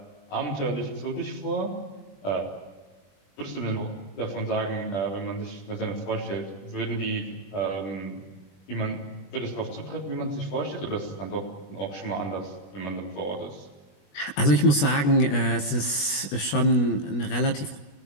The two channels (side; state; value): right; late; 21 ms